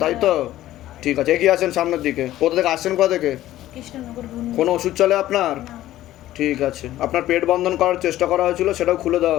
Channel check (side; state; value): right; quieter; 14.3 dB